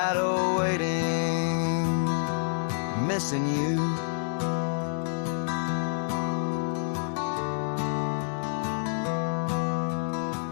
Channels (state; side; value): silent; right; digital silence